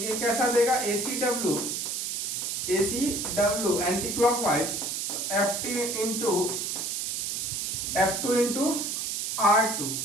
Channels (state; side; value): noise; right; hiss, 2 dB below the sound